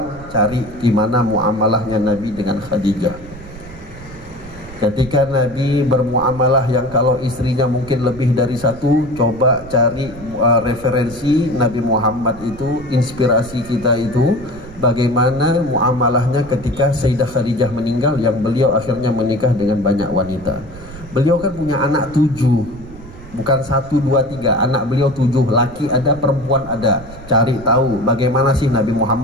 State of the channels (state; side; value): noise; right; rumble, 17 dB below the sound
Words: cari gimana muamalahnya Nabi dengan Khadijah. Ketika Nabi bermuamalah yang kalau istrinya mungkin lebih dari satu, coba cari referensi Nabi Muhammad itu, inspirasi kita itu, bagaimana muamalahnya ketika Sayyidah Khadijah meninggal, yang beliau akhirnya menikah dengan banyak wanita. Beliau kan punya anak 7, bukan 1, 2, 3, anak beliau 7, laki ada, perempuan ada. Cari tahu bagaimana sih Nabi